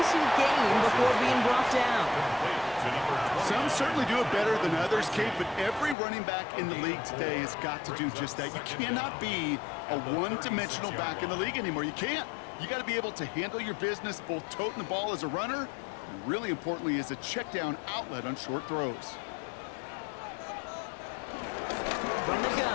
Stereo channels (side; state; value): right; drops out; at 6.0 s